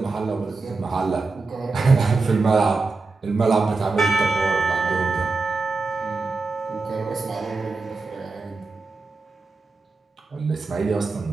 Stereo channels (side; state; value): left; quieter; 3.9 dB